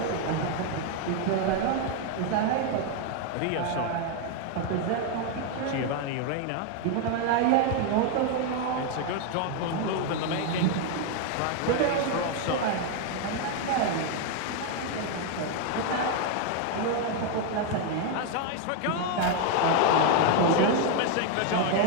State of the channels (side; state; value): both; different; correlation 0.01